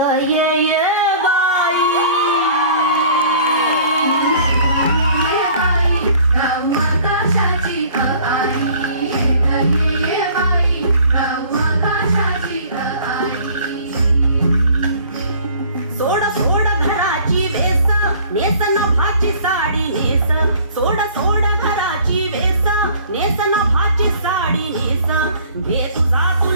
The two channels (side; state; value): both; inverted; correlation -0.51